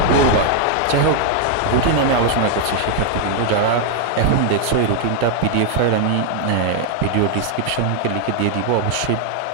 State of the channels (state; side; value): different; both; correlation 0.00